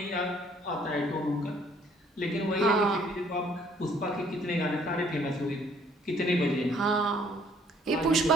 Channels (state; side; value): normal; both; correlation 0.61